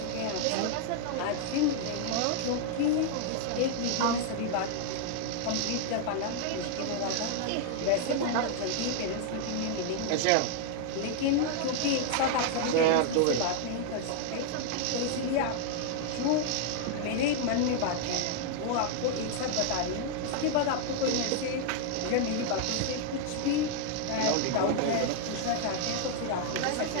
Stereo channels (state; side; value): different; both; correlation 0.00